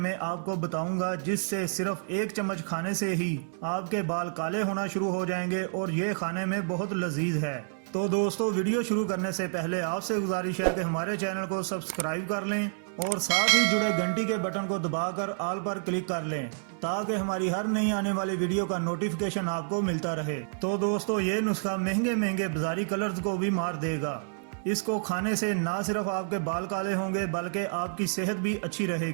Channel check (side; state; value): left; silent; digital silence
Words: आपको बताऊंगा जिससे सिर्फ एक चम्मच खाने से ही आपके बाल काले होना शुरू हो जाएंगे और ये खाने में बहुत लजीज है। तो दोस्तों, वीडियो शुरू करने से पहले आपसे गुजारिश है कि हमारे चैनल को सब्सक्राइब कर लें और साथ ही जुड़े घंटी के बटन को दबाकर ऑल पर क्लिक कर लें ताकि हमारी हर नई आने वाली वीडियो का नोटिफिकेशन आपको मिलता रहे। तो दोस्तों, ये नुस्खा महंगे महंगे बाजारी कलर्स को भी मार देगा। इसको खाने से ना सिर्फ आपके बाल काले होंगे बल्कि आपकी सेहत भी अच्छी